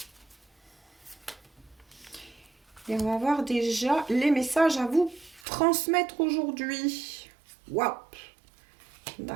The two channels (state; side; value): drops out; left; at 5.4 s